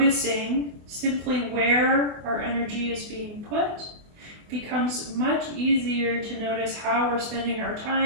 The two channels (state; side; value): late; left; 24 ms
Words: simply where our energy is being put, it becomes much easier to notice how we're spending our